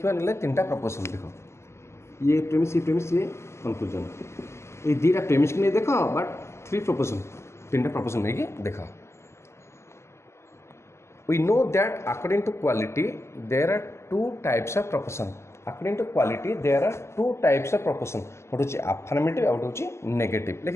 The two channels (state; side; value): late; right; 0.13 ms